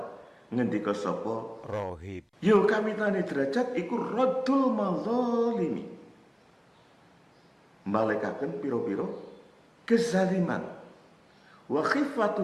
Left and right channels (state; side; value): identical; both; correlation 1.00